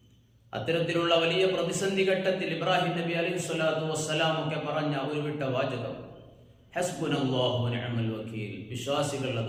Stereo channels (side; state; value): both; identical; correlation 1.00